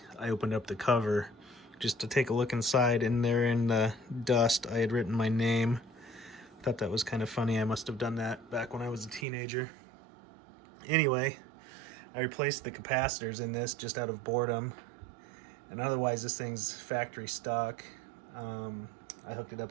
I opened up the cover just to take a look inside, and there in the dust I had written my name. Thought that was kind of funny. I must have done that back when I was a teenager. Anyway, I replaced the capacitors in this just out of boredom, and otherwise this thing's factory stock. I hooked it up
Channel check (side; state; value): left; drops out; at 9.2 s